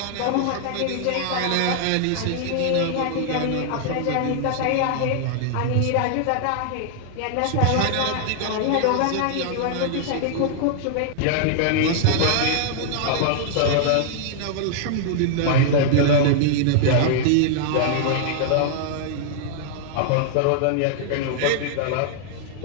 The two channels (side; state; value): both; different; correlation -0.01